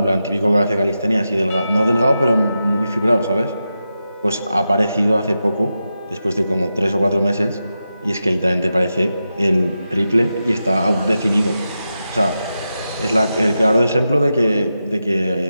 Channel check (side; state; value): both; inverted; correlation -0.89